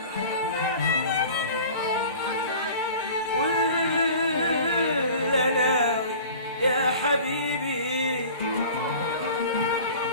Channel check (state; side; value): inverted; both; correlation -0.42